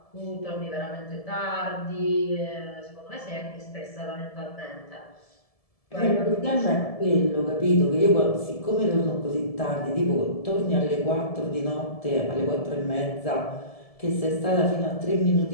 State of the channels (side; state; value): right; late; 1.7 ms